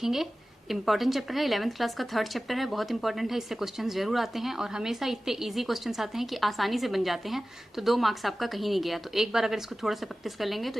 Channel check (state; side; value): normal; both; correlation 0.96